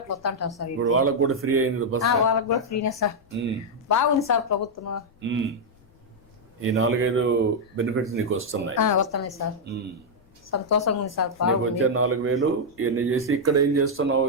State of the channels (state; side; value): noise; left; rumble, 29 dB below the sound